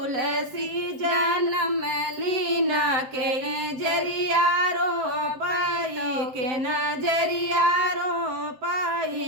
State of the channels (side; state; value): left; late; 7.7 ms